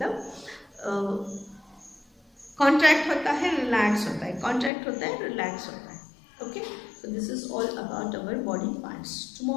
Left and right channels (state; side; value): drops out; right; at 4.7 s